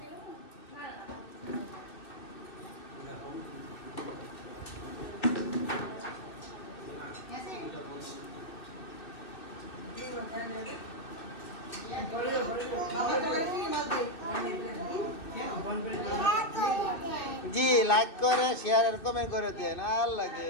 জি লাইক করে শেয়ার আর কমেন্ট করে দেন আল্লাহ গো।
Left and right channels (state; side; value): late; right; 2.6 ms